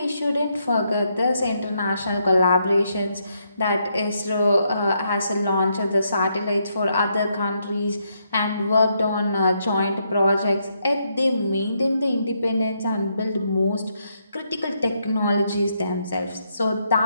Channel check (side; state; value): both; inverted; correlation -0.77